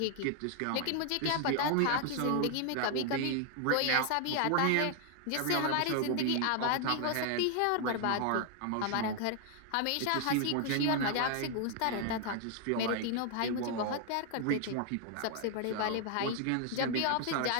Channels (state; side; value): different; both; correlation 0.00